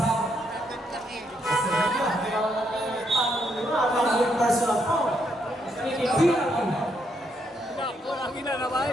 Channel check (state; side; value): normal; both; correlation 0.76